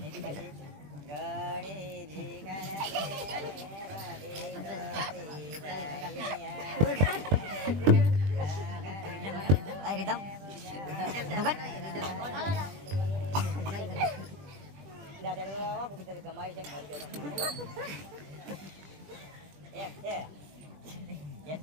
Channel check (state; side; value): late; left; 20 ms